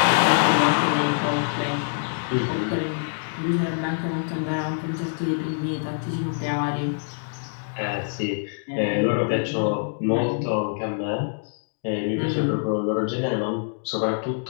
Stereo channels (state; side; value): silent; right; digital silence